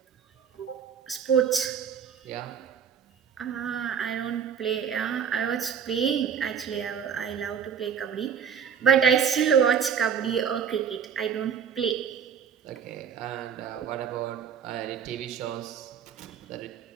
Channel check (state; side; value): quieter; left; 7.6 dB